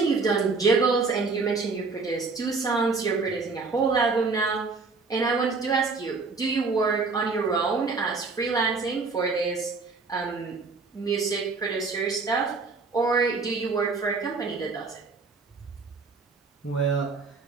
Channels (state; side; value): quieter; left; 4.3 dB